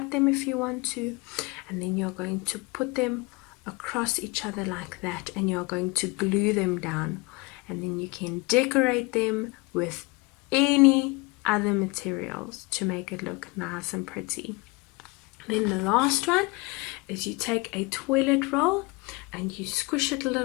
them if you want to, and then you're going to put them across each other like that, and you're going to glue them down, and then you can decorate them with any other materials to make it look nice and pretty. Then the last one is you take a toilet roll and you squish it a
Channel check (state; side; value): quieter; right; 25.6 dB